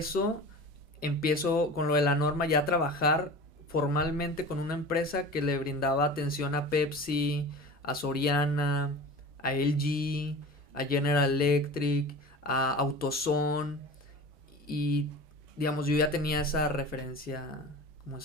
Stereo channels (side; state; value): both; normal; correlation 0.35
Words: empiezo con lo de la norma ya a trabajar formalmente con una empresa que le brindaba atención a Pepsi, a Soriana, a LG, a General Electric, a AutoZone, y digamos, yo ya tenía esa referencia, como